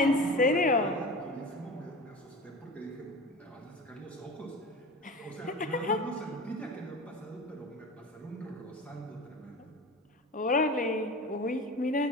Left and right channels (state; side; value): normal; both; correlation 0.33